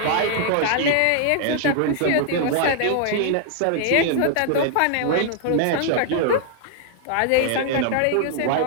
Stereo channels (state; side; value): different; both; correlation 0.00